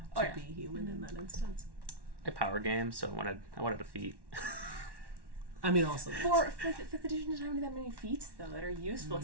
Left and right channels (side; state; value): left; late; 1.1 ms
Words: to Oh, yeah. be human in that instance. I power game, so I wanted a feat. I mean, also. For fifth edition doesn't have that many feats though that are useful,